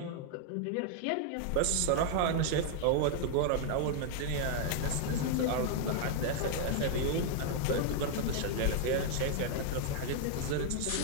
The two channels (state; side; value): different; both; correlation 0.00